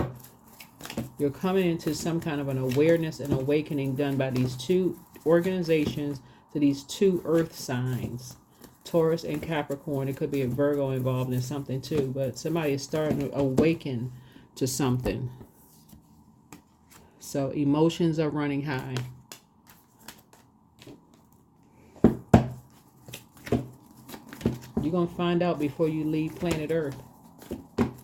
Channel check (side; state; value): both; identical; correlation 1.00